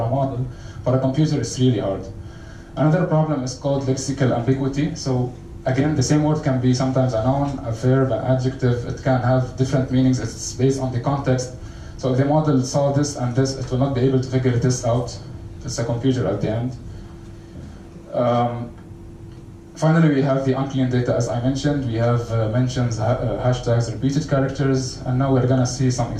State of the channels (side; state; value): both; identical; correlation 1.00